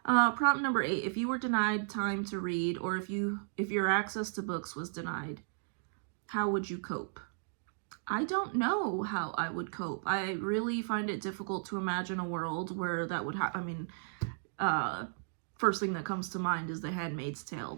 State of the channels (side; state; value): left; silent; digital silence